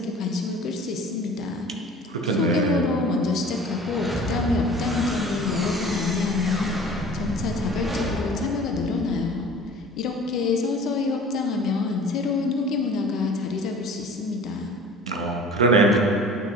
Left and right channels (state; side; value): normal; both; correlation 0.44